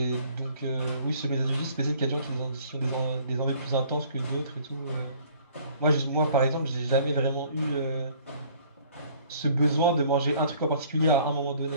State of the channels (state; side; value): inverted; both; correlation -0.56